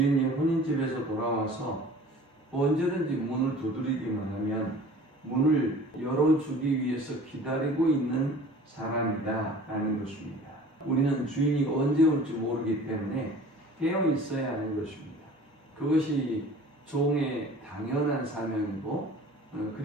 혼인집에서 돌아와서 언제든지 문을 두드리기만 하면 문을 열어주기 위해서 기다리고 있는 사람이다 라는 것입니다. 우리는 주인이 언제 올지 모르기 때문에 깨어 있어야 하는 것입니다. 그것이 종의 당연한 사명이고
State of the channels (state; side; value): normal; both; correlation 0.45